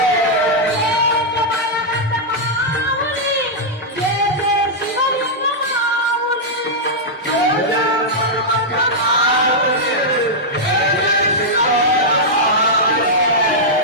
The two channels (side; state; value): both; normal; correlation -0.07